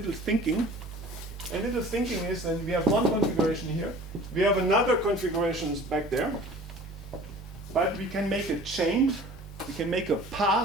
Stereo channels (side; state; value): right; noise; hum, 16 dB below the sound